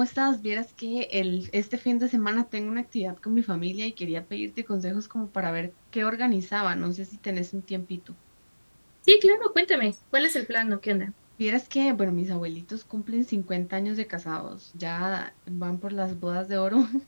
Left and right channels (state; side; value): inverted; both; correlation -1.00